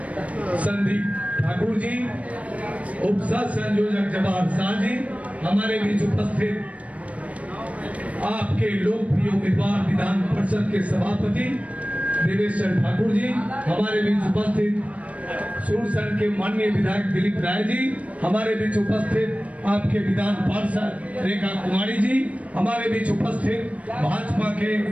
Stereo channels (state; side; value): late; left; 0.066 ms